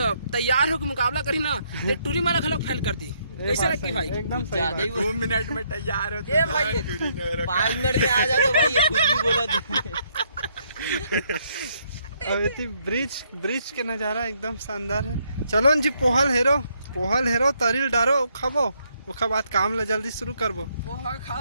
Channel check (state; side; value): inverted; both; correlation -0.72